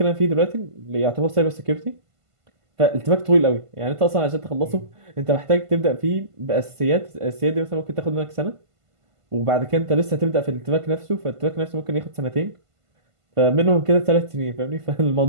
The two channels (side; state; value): left; late; 1.5 ms